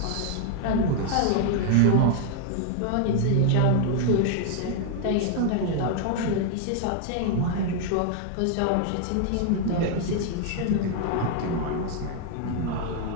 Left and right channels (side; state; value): both; different; correlation 0.00